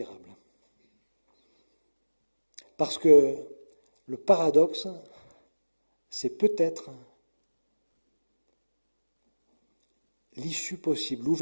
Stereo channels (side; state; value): both; inverted; correlation -1.00